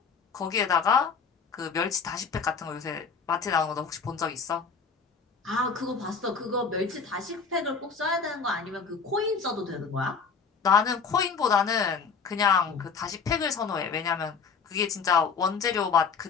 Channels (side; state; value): right; quieter; 5.5 dB